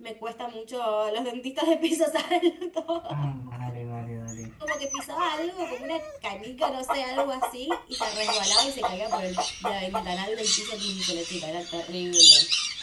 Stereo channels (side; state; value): both; identical; correlation 1.00